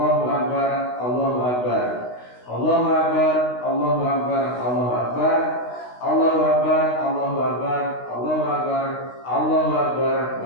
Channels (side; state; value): right; late; 16 ms